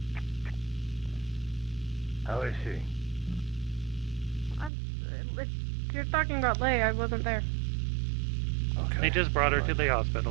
How is she? If you're talking about Leia, I wasn't there. They just brought her to the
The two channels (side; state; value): left; drops out; at 4.7 s